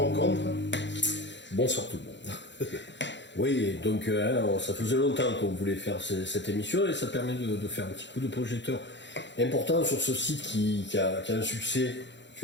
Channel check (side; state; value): right; late; 0.52 ms